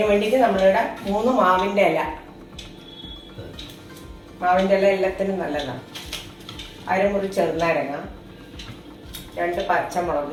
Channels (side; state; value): both; identical; correlation 1.00